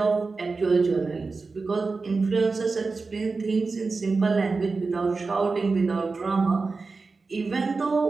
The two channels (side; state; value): left; quieter; 4.1 dB